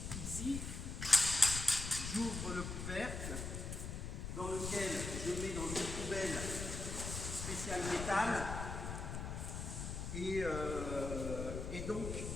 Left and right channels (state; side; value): noise; left; rumble, 5 dB below the sound